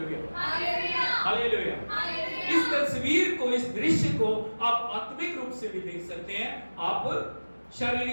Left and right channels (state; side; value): inverted; both; correlation -1.00